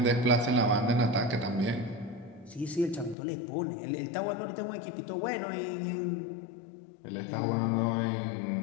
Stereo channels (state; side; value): drops out; right; at 3.2 s